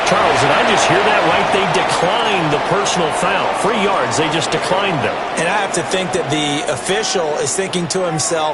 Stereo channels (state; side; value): identical; both; correlation 1.00